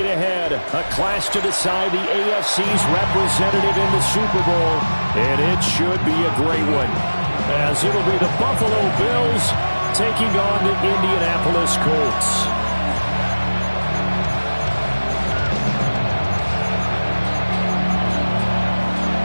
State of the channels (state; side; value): inverted; both; correlation -1.00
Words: ahead, a clash to decide the AFC's representative in the Super Bowl, and it should be a great one, as it'll be the Buffalo Bills taking on the Indianapolis Colts.